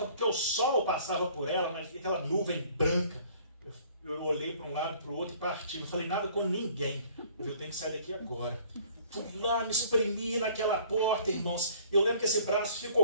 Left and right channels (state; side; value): inverted; both; correlation -0.55